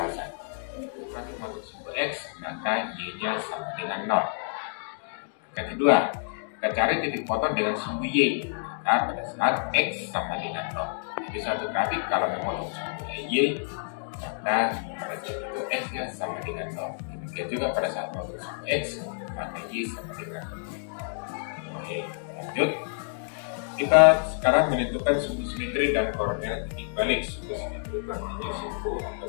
Kurang masuk simbol x, maka y-nya sama dengan 0. Yang kedua, kita cari titik potong dengan sumbu y. Nah, pada saat x sama dengan 0. Jadi suatu grafik kalau memotong sumbu y, maka pada saat itu x-nya sama dengan 0. Demikian juga pada saat memotong sumbu x, maka y sama dengan 0. Oke, lanjut. Kita sekarang menentukan sumbu simetri dan koordinat titik balik. Sumbu simetri artinya sumbu atau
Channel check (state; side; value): silent; right; digital silence